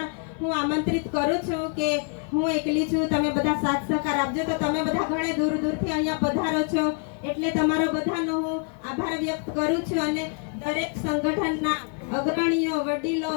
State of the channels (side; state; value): right; quieter; 39.6 dB